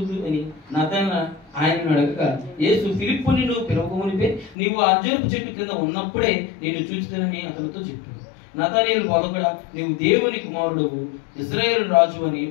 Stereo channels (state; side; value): drops out; right; at 4.5 s